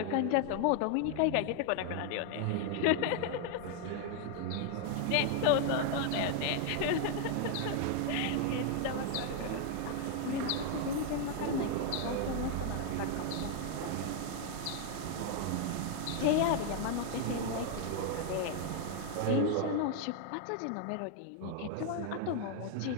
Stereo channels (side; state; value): both; different; correlation 0.00